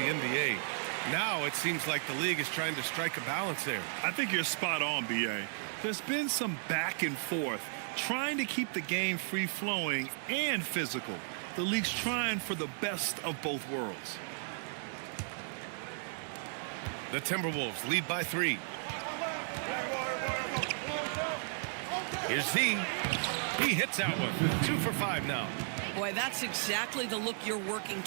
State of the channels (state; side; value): silent; left; digital silence